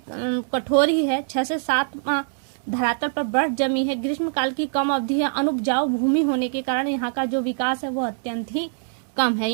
कठोर ही है। 6 से 7 माह धरातल पर बर्फ जमी है। ग्रीष्म काल की कम अवधि है। अनुपजाऊ भूमि होने के कारण यहाँ का जो विकास है वो अत्यंत ही कम है।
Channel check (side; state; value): left; silent; digital silence